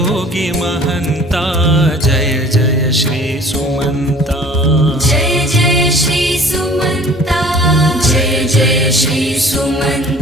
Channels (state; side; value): normal; both; correlation 0.49